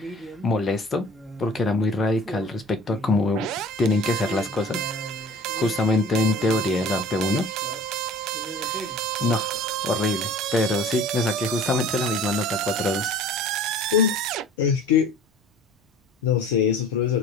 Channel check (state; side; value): normal; both; correlation 0.45